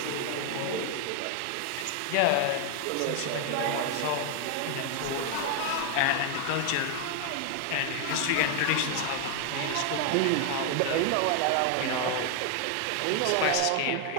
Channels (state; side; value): different; both; correlation 0.00